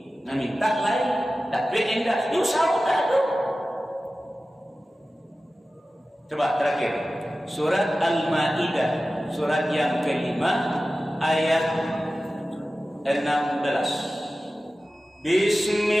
lain, dapat enggak? Yuk sama tak ada. Coba terakhir, surat Al-Maidah, surat yang kelima, ayat 16.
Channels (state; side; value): normal; both; correlation 0.95